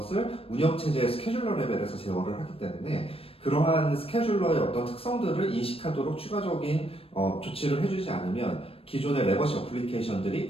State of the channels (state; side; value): late; right; 0.28 ms